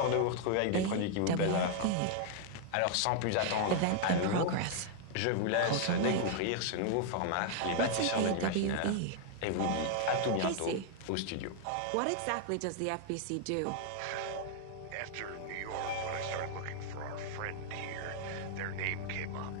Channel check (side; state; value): both; different; correlation 0.00